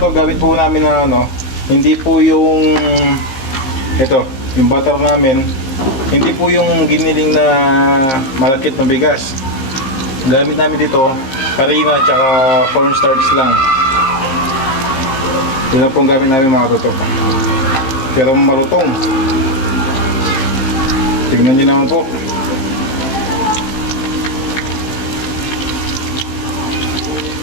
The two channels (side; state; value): right; late; 15 ms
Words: gamit po namin na ano, hindi po yung, ito, yung butter namin, hindi po yung giniling na malakit na bigas. Gamit namin dito, harina at saka cornstarch lang. Yun lang pong gamit namin mga katoto. Pero malutong. Tignan nyo naman po.